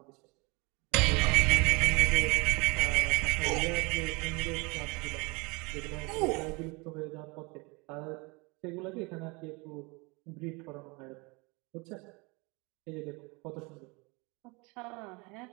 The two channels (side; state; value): left; quieter; 27.7 dB